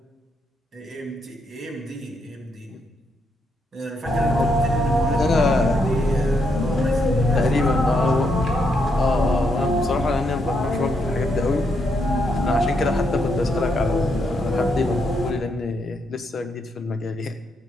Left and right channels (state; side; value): normal; both; correlation 0.78